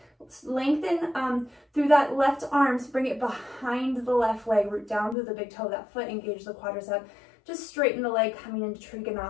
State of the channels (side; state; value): right; drops out; at 5.2 s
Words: Let's lengthen through that left arm, so bring it behind the left leg, root down through the big toe of that foot, engage the quadricep. Just straighten the leg, coming into